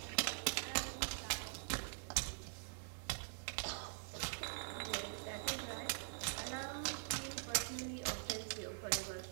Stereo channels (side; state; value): left; silent; digital silence